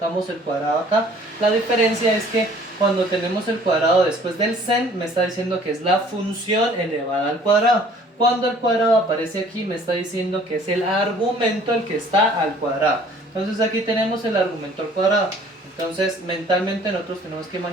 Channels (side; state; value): both; normal; correlation 0.54